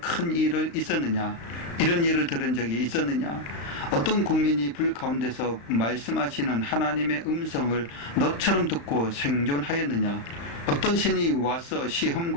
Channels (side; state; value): right; late; 35 ms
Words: 일을 있었느냐? 이런 일을 들은 적이 있었느냐? 어떤 국민이 불 가운데서 말씀하시는 하나님의 음성을 너처럼 듣고 생존하였느냐? 어떤 신이 와서